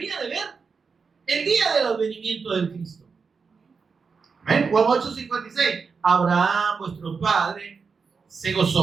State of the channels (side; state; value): left; quieter; 5.2 dB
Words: de ver el día del advenimiento del Cristo. Amén. Juan 8:56, Abraham, vuestro padre, se